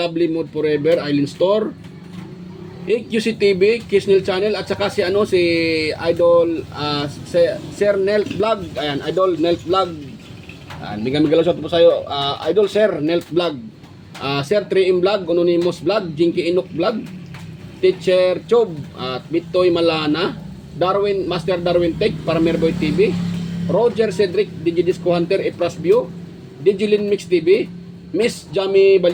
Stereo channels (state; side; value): identical; both; correlation 1.00